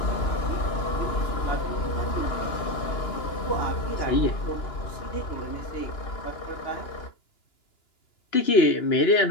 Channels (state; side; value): late; right; 2.9 ms